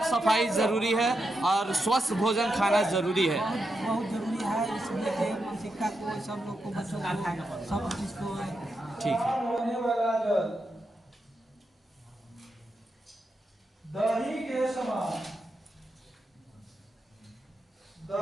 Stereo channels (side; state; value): both; normal; correlation 0.85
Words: सफाई ज़रूरी है और स्वस्थ भोजन खाना ज़रूरी है। बहुत ज़रूरी है, इसलिए मानसिकता को सब लोग को, बच्चों को, सब चीज़ को। ठीक है। दही के समान,